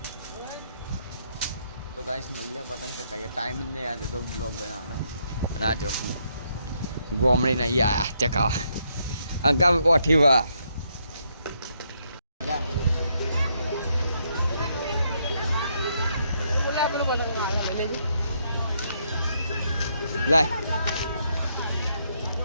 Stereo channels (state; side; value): inverted; both; correlation -0.75